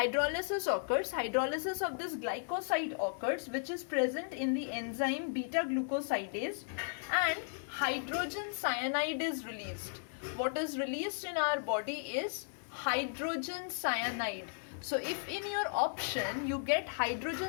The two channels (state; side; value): silent; right; 54 dB below the other